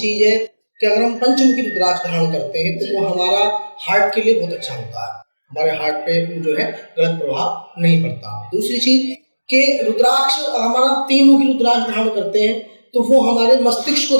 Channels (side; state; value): both; inverted; correlation -1.00